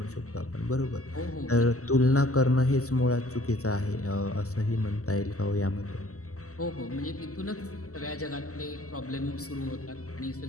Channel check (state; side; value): late; right; 0.65 ms